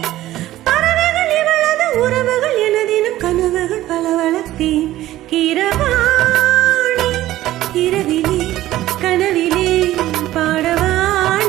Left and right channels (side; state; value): left; quieter; 14.9 dB